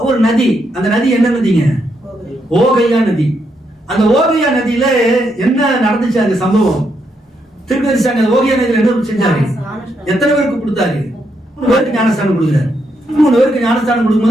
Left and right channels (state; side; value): normal; both; correlation 0.79